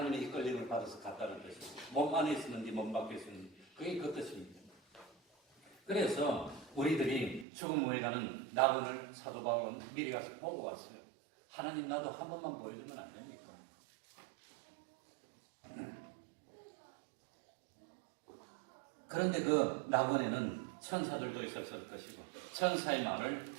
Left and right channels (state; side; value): drops out; left; at 7.5 s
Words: 이끌림을 받아서 갔다는 뜻입니다. 몸 안에 있었는지 몸 밖에 있었는지 그게 그 뜻입니다. 그래서 우리들이 죽음 후에 가는 낙원을 사도 바울은 미리 가서 보고 왔어요. 하나님 나도 한 번만 보여주면 안 됩니까? 그런데 그 낙원에는 천사들도 있었을 것이고 천사의 말을